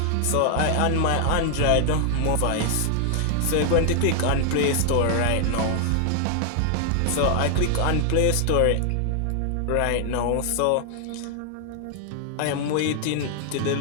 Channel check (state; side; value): different; both; correlation 0.00